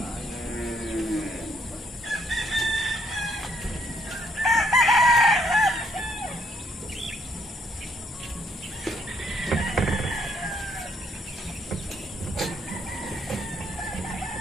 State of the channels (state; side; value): normal; both; correlation 0.70